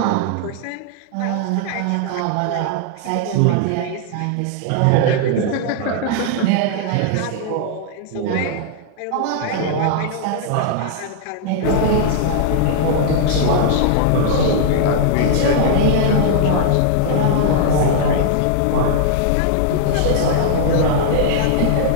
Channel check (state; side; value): different; both; correlation -0.01